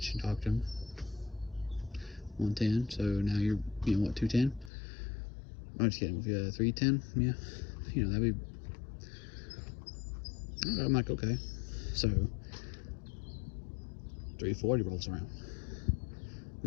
you, talked to him. 1:10, so now you're, what, 2:10? I'm just kidding, if you 3:10, yeah, that'd be, I'm like, okay. So 3:40 rolls around.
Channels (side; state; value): right; drops out; at 4.7 s